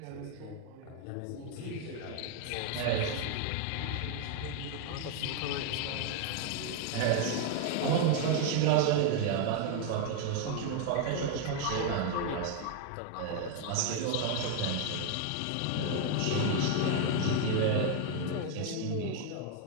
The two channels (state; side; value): different; both; correlation 0.01